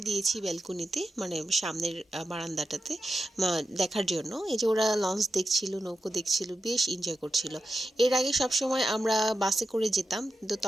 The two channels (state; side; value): normal; both; correlation 0.90